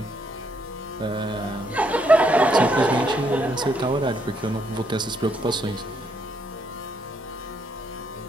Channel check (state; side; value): normal; both; correlation 0.73